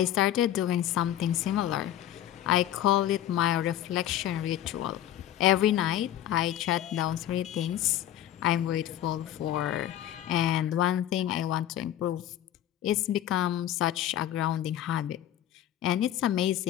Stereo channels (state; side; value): quieter; right; 12.0 dB